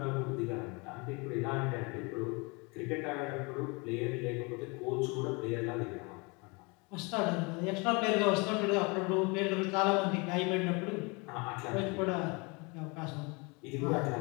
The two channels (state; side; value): quieter; right; 29.2 dB